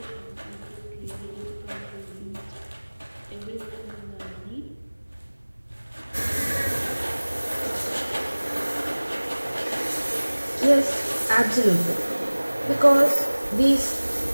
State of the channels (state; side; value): inverted; both; correlation -1.00